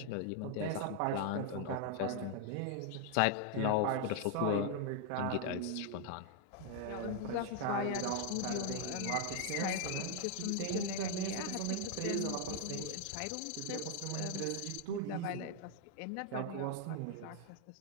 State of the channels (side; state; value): both; different; correlation 0.00